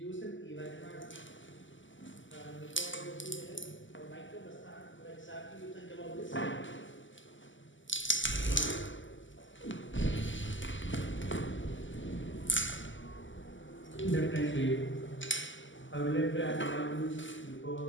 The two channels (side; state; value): right; late; 0.55 ms